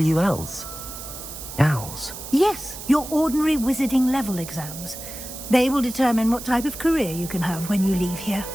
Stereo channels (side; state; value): right; noise; hiss, 11 dB below the sound